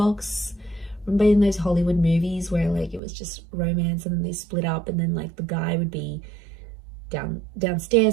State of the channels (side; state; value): left; drops out; at 3.0 s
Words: Remember in those Hollywood movies where like it was just romance and then they split up, and then like the guy would be